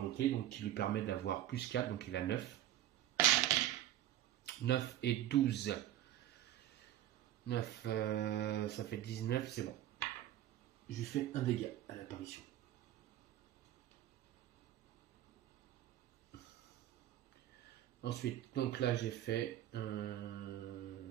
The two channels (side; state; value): left; quieter; 12.9 dB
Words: donc qui lui permet d'avoir plus 4. Donc, il a 9. 9 et 12. 9, ça fait 19, c'est bon. Je lui fais un dégât à l'apparition. Ensuite, donc là j'ai fait 1,